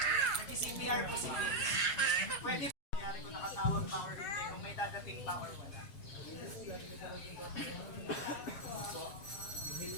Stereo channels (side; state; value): right; late; 7.4 ms